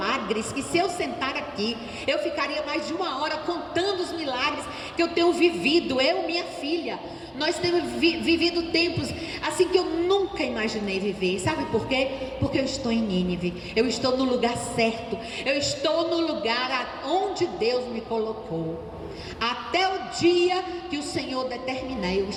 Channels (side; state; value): both; identical; correlation 1.00